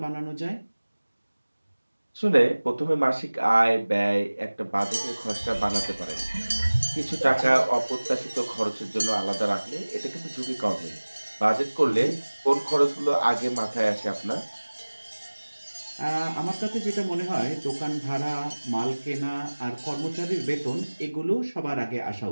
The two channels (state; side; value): inverted; both; correlation -1.00